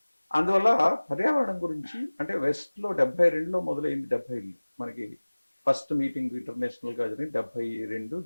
అందువల్ల పర్యావరణం గురించి అంటే వెస్ట్లో 72లో మొదలైంది. 70 మనకి ఫస్ట్ మీటింగ్ ఇంటర్నేషనల్గా జరిగింది 72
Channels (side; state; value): both; inverted; correlation -1.00